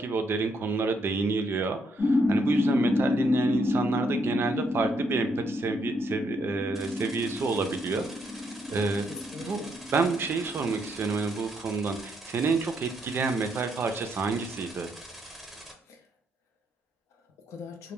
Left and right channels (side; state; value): both; normal; correlation 0.75